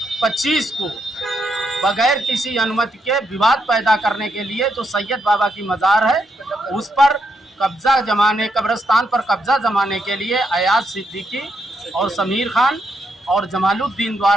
को बगैर किसी अनुमति के विवाद पैदा करने के लिए जो सैयद बाबा की मज़ार है उस पर कब्रिस्तान पर कब्जा जमाने के लिए अयाज सिद्दीकी और समीर खान और जमालुद्दीन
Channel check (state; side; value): normal; both; correlation 0.79